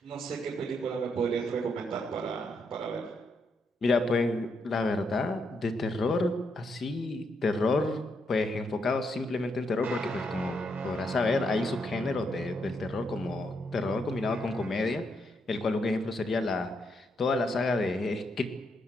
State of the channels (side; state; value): both; normal; correlation 0.78